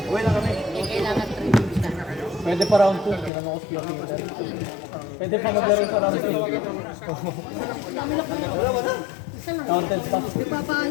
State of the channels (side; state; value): right; drops out; at 3.3 s